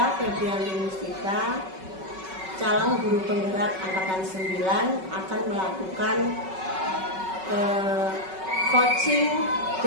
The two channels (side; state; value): left; late; 5.3 ms